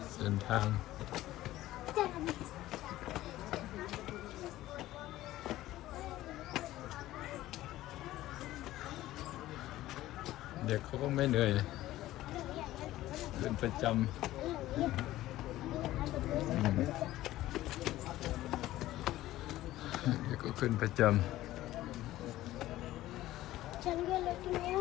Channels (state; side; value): quieter; right; 15.4 dB